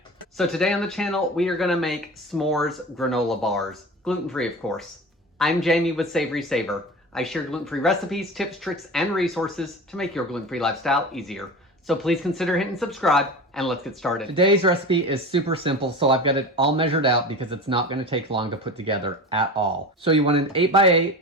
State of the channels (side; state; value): both; normal; correlation 0.32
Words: So today on the channel, we are going to make s'mores granola bars, gluten-free of course. I'm Jamie with SavorySaver. I share gluten-free recipes, tips, tricks, and resources to make your gluten-free lifestyle easier. So please consider hitting subscribe and let's get started. Today's recipe is super simple, so I've got it all measured out because it's not going to take long to put together at all. So you want an 8x8